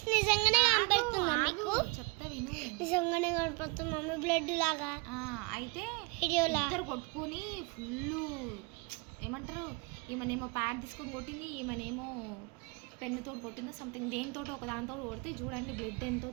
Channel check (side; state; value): left; quieter; 30.1 dB